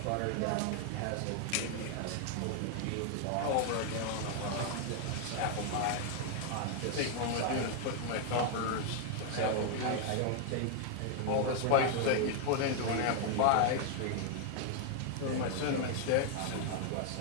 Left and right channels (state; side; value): different; both; correlation 0.00